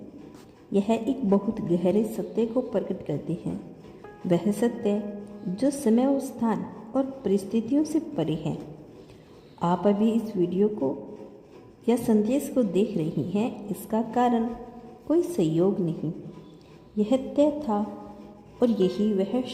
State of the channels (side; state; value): both; identical; correlation 1.00